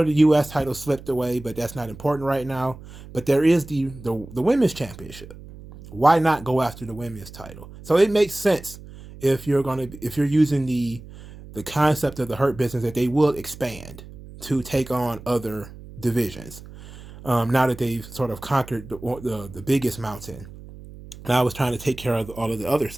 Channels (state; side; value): noise; right; hum, 17 dB below the sound